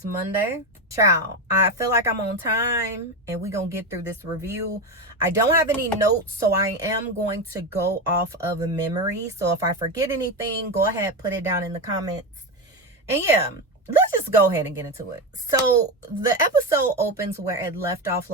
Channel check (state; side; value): normal; both; correlation 0.15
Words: Monday. Ciao. I feel like I'm on time and we're going to get through this review. I don't have any notes, so I am going to go off of a memory. So if I forget anything, go ahead, put it down in the comments. And yeah, let's just go ahead and get into it. So the episode opens where it left off